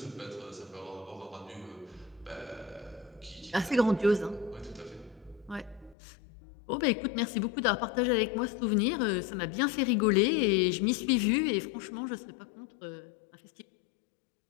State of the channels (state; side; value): drops out; right; at 6.0 s